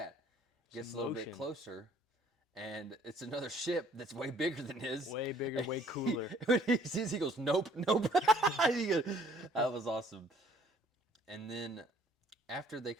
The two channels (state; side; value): normal; both; correlation 0.58